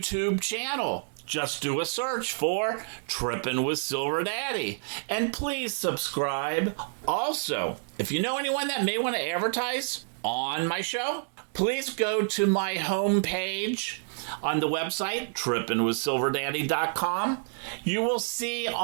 channel. Just do a search for Trippin' with Silver Daddy. And please subscribe. Also, if you know anyone that may want to advertise on my show, please go to my homepage on the website, trippinwithsilverdaddy.com. You will see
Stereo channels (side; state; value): left; silent; digital silence